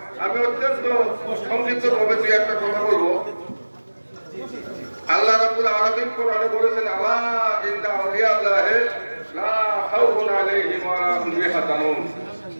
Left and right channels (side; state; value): both; inverted; correlation -1.00